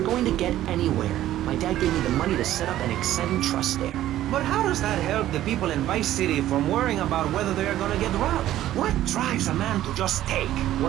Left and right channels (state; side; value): quieter; left; 13.4 dB